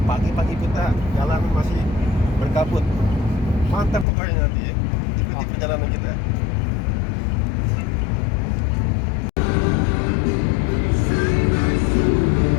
pagi-pagi kita jalan masih berkabut. Mantap pokoknya nanti ya. Ikuti perjalanan kita.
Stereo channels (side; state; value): right; drops out; at 4.0 s